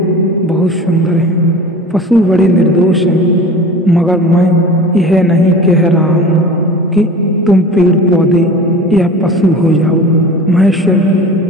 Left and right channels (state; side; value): normal; both; correlation 0.37